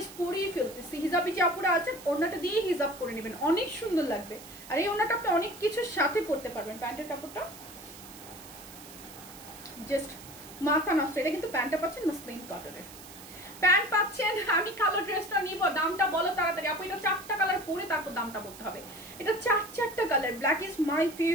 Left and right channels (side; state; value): right; noise; hiss, 17 dB below the sound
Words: ফেলতেছি। হিজাবি যে আপুরা আছেন ওড়নাটা দিয়ে হিজাব করে নেবেন, অনেক সুন্দর লাগবে। আর এই ওড়নাটা আপনি অনেক কিছুর সাথে পরতে পারবেন। প্যান্টের কাপড়টা জাস্ট মাথা নষ্ট। এটা কিন্তু প্যান্টটা পাচ্ছেন মসলিন কটনের প্যান্ট পাচ্ছেন। আমি কালো ড্রেসটা নিব, দামটা বলো তাড়াতাড়ি আপু। এটা 4টা কালার পরে তারপর দামটা বলতে হবে। এটা 4টা colour, black is my